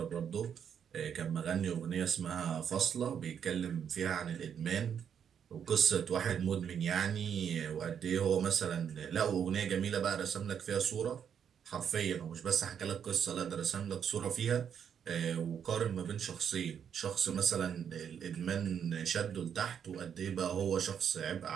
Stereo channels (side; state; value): left; quieter; 8.1 dB